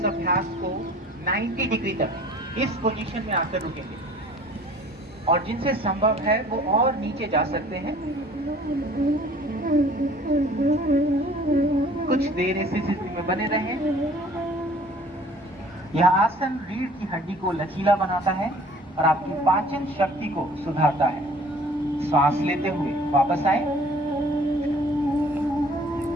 अभ्यास को 90 डिग्री तक इस पोजीशन में आकर रुकेंगे और जिनसे संभव है वो और नीचे जा सकते हैं। कुछ देर इस स्थिति में बने रहें। यह आसन रीढ़ की हड्डी को लचीला बनाता है और आपकी पाचन शक्ति को सुधारता है। श्वास लेते हुए वापस आए,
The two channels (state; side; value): normal; both; correlation 0.51